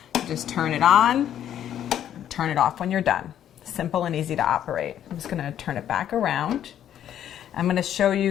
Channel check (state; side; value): quieter; right; 10.5 dB